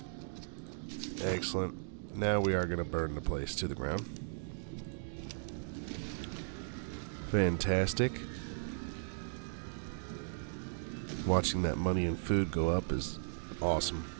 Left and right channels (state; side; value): silent; left; digital silence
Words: Excellent. Now we are going to burn the place to the ground. Fantastic. Watching that money and food go up is awesome.